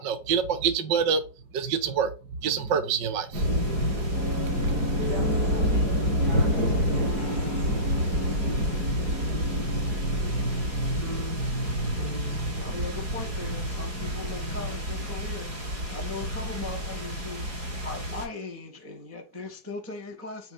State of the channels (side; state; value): left; late; 4.8 ms